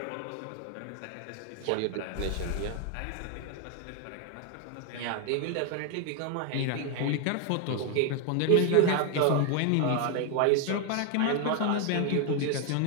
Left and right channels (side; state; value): both; different; correlation 0.00